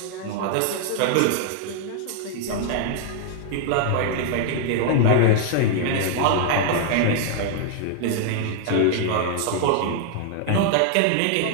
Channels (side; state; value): both; different; correlation 0.00